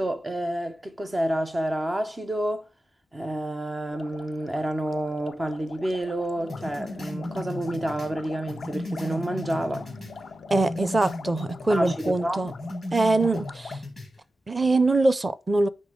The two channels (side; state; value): both; normal; correlation 0.93